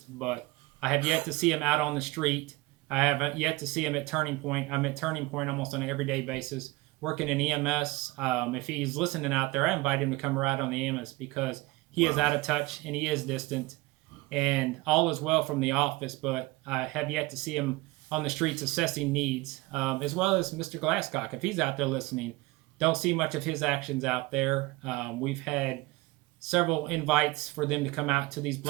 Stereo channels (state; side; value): quieter; left; 21.4 dB